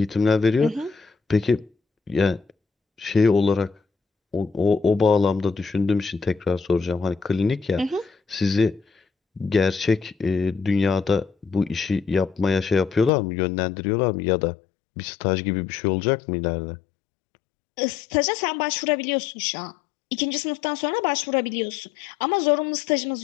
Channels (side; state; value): right; drops out; at 13.1 s